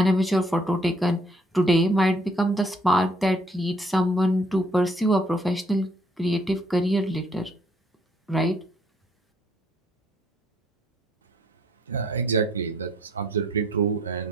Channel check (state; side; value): normal; both; correlation 0.65